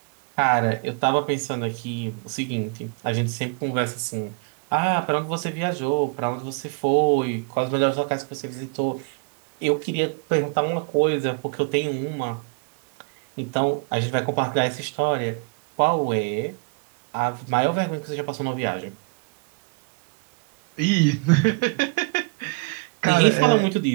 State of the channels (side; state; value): left; quieter; 31.1 dB